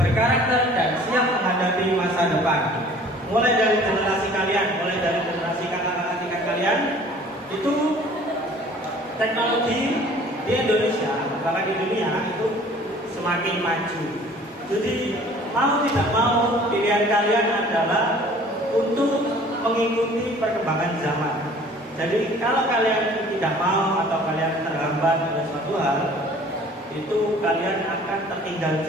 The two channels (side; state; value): both; normal; correlation 0.50